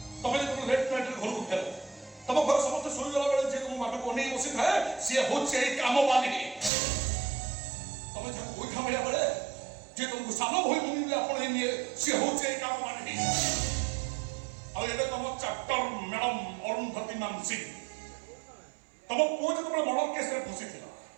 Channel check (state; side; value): drops out; left; at 6.7 s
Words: ତମେ ଯେତେବେଳେ ଲେଟ୍ ନାଇଟ୍ରେ ଘରକୁ ଫେର ତମ ଘର ସମସ୍ତେ ଶୋଇଗଲା ବେଳେ ଯେ ତମ ବାଟକୁ ଅନେଇ ବସିଥାଏ ସିଏ ହଉଛି ଏଇ କାମବାଲି ତମେ ଯାହାକୁ ଗୋଇଠା ମାରିବା ବେଳେ ଯେ ତମକୁ ସାନ ଭଳି ଭୂମି ଆପଣେଇ ନିଏ ସିଏ ହଉଛି ଏଇ କାମବାଲି ଆଉ ଏବେ ତମ ଚାପ୍ଟର ମ୍ୟାଡମ ଅରୁନ୍ଧତୀ ମାନସିଂ ତମ ପୁଅ ଯେତେବେଳେ ମର୍ଡର କେସରେ ଫସିଥିଲା